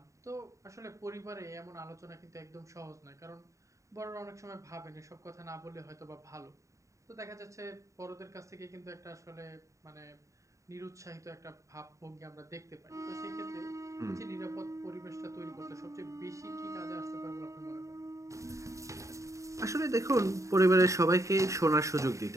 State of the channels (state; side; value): late; left; 0.15 ms